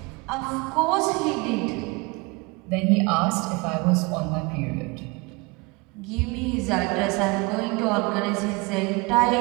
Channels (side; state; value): left; quieter; 26.8 dB